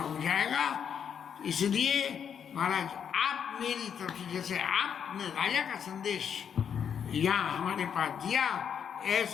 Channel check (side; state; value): right; quieter; 7.8 dB